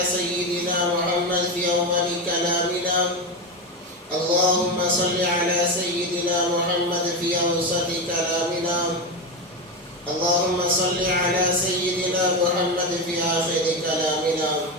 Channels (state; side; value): normal; both; correlation 0.16